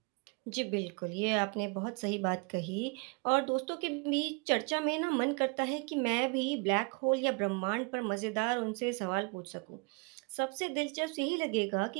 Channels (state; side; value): quieter; left; 31.5 dB